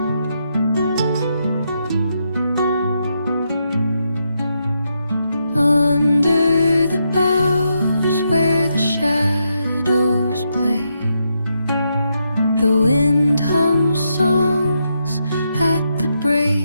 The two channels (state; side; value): inverted; both; correlation -0.81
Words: Under the boughs where the shadows play, the wind hums songs at the